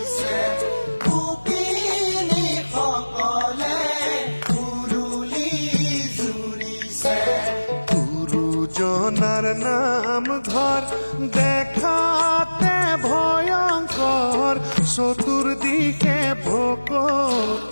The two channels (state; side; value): inverted; both; correlation -1.00